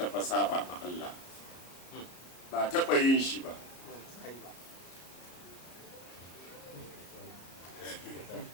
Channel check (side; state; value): right; late; 34 ms